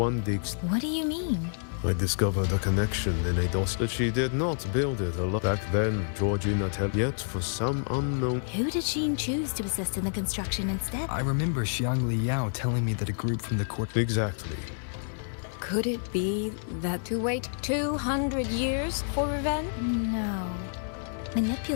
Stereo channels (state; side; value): silent; right; digital silence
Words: digs... What do you mean? I discovered a connection in a DOS that she did not build it alone. Back then, Georgian Atelier, yet for some unknown... Who did Sheen choose to assist in the construction instead? I remember Xiang Li Yao telling me that a group from the court... Exactly. Could it be that to wait 200 years for revenge? No.